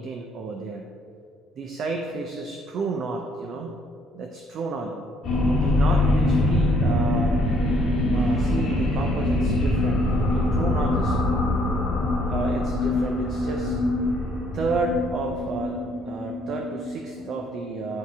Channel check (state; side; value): normal; both; correlation 0.66